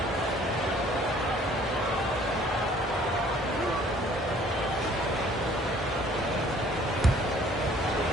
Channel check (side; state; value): both; normal; correlation 0.56